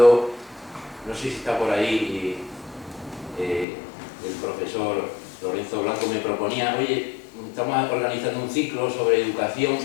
no sé si está por ahí, el profesor Lorenzo Blanco me proponía, oye, estamos organizando un ciclo sobre educación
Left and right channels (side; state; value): right; drops out; at 3.7 s